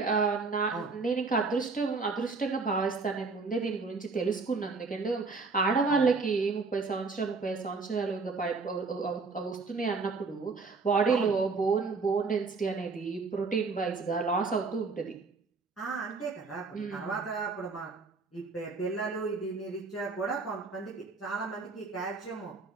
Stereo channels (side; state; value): left; quieter; 4.2 dB